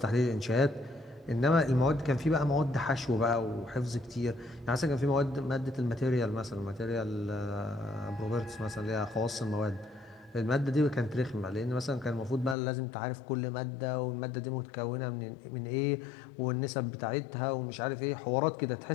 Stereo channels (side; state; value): right; drops out; at 12.6 s